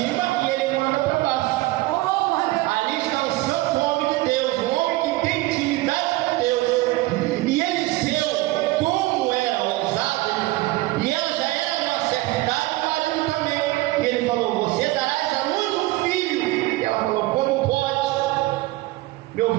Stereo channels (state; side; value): quieter; left; 19.3 dB